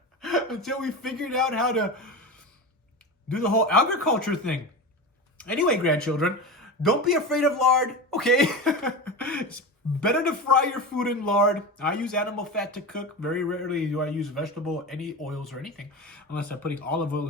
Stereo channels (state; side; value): normal; both; correlation 0.25